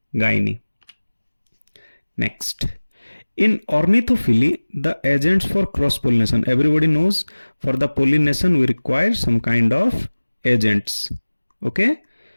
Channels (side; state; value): both; inverted; correlation -1.00